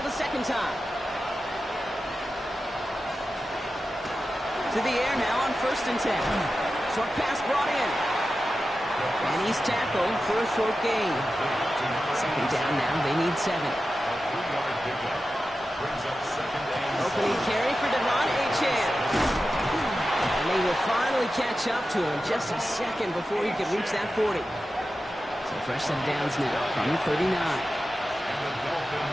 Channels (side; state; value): both; normal; correlation 0.92